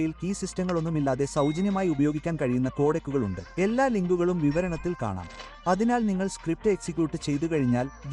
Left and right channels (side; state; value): both; identical; correlation 1.00